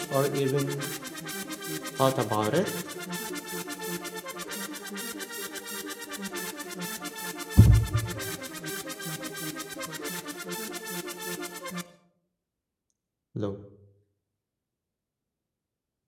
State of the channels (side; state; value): both; identical; correlation 1.00